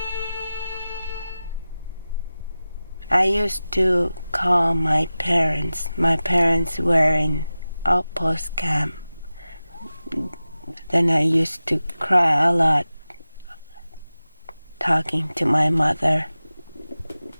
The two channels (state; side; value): inverted; both; correlation -0.95